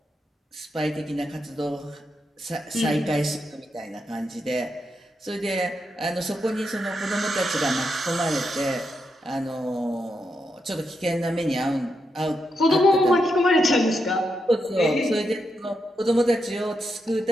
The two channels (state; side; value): normal; both; correlation 0.84